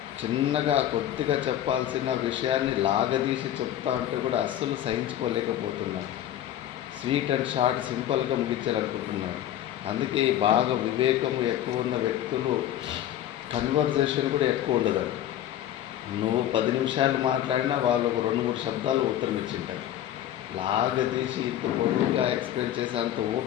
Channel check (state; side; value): quieter; right; 11.9 dB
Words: చిన్నగా కొద్దిగా చెప్పాల్సిన విషయాన్ని లాగదీసి చెప్తా ఉంటే కూడా అస్సలు సహించుకోలేకపోతున్నాడు. స్వీట్ అండ్ షార్ట్ సింపుల్గా ముగించాలనుకుంటున్నాడు. అందుకే బాగా వివేకము ఎక్కువ ఉన్న వ్యక్తులు కన్వర్జేషన్ కూడా ఎక్కువ ఉండదండి. నువ్వు 10 నిమిషాలు మాట్లాడినా వాళ్ళు ఒక 2-3 శబ్దాలు ఉత్తరం ఇచ్చింటారు. లాగదీసి ఇంత పొడవుగా ఎక్స్ప్లెయిన్ చేసే అంత